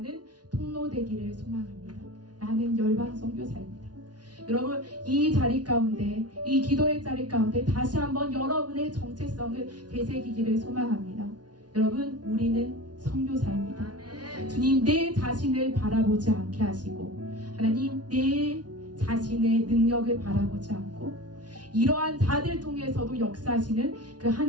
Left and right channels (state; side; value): late; left; 0.69 ms